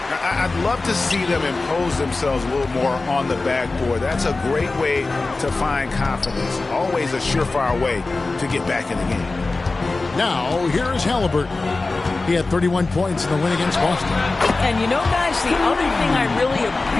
I'd love to see them impose themselves a little more on the backboard. That's a great way to find confidence. Always a surefire way to get back in the game. Now, here is Halliburton. He had 31 points in the win against Boston. And you know, guys, the other thing I really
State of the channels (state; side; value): quieter; right; 3.5 dB